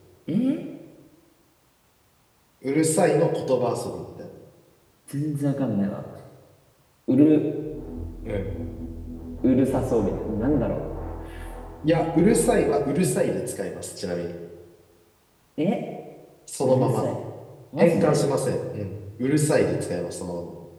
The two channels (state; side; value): identical; both; correlation 1.00